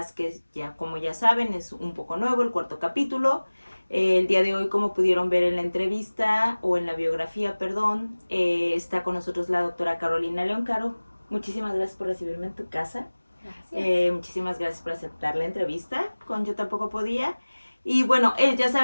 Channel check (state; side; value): inverted; both; correlation -1.00